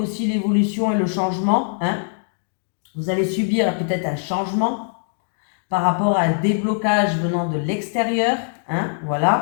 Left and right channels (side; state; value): right; silent; digital silence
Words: l'évolution et le changement, hein. Vous allez subir peut-être un changement par rapport à un déblocage venant de l'extérieur, hein,